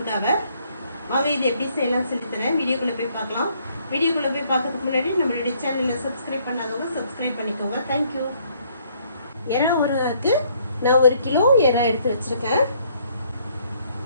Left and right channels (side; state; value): both; inverted; correlation -0.66